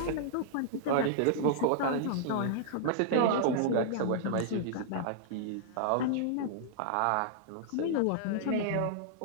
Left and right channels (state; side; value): different; both; correlation -0.01